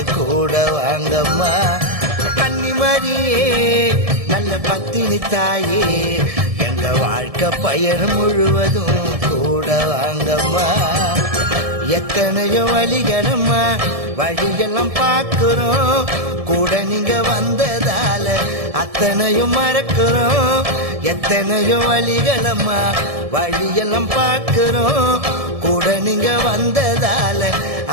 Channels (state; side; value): late; left; 1.7 ms